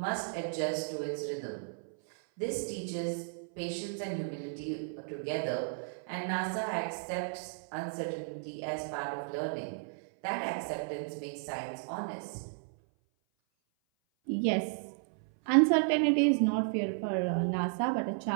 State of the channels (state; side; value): silent; left; 55 dB below the other